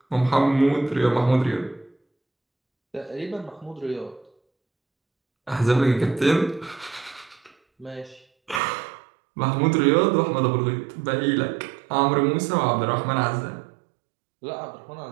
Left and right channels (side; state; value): left; drops out; at 8.6 s